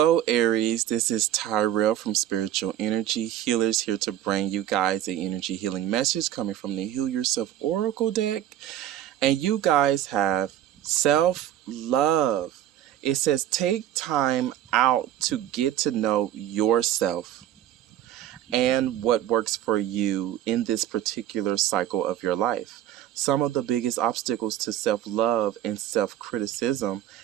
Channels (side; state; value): left; quieter; 11.9 dB